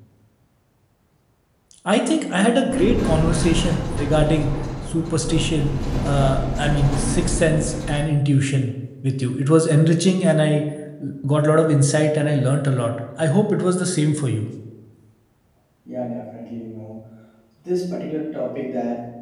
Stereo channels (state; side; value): identical; both; correlation 1.00